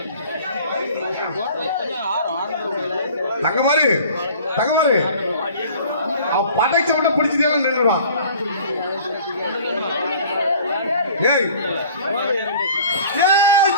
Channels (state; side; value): inverted; both; correlation -0.48